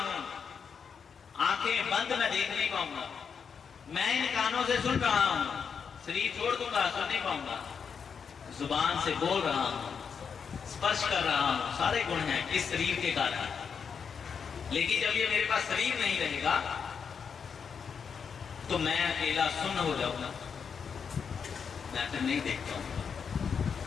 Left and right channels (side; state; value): right; quieter; 6.5 dB